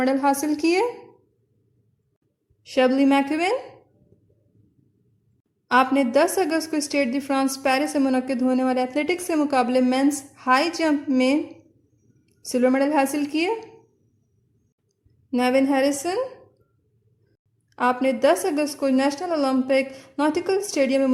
हासिल किए। शबली मैकविन, आपने 10 अगस्त को स्टेड दी फ्रांस पेरिस से मुनक्किद होने वाले एथलेटिक्स के मुकाबले मेंस हाई जंप में सिल्वर मेडल हासिल किए। नेविन हैरिसन, आपने 10 अगस्त को नेशनल ओलंपिक नॉटिकल स्टेडियम में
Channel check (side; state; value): both; identical; correlation 1.00